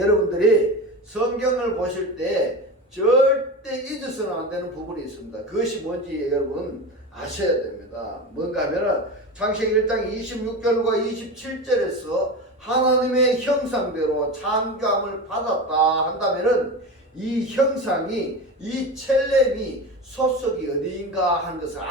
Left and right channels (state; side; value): normal; both; correlation 0.26